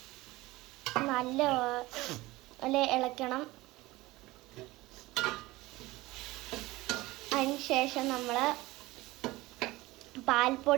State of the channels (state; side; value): quieter; left; 19.7 dB